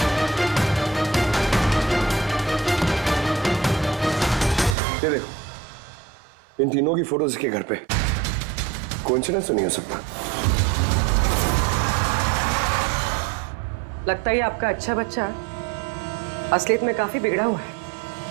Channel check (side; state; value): left; drops out; at 4.8 s